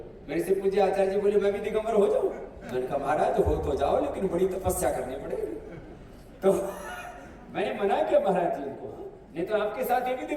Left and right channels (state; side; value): identical; both; correlation 1.00